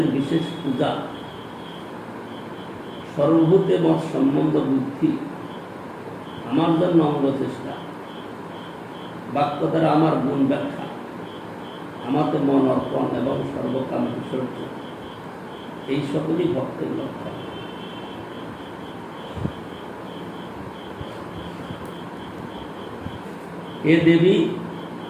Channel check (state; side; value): identical; both; correlation 1.00